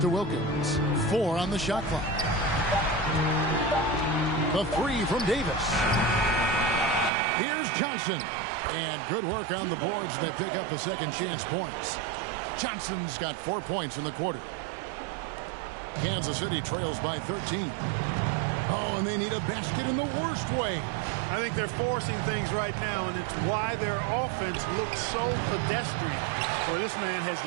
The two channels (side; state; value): left; drops out; at 7.1 s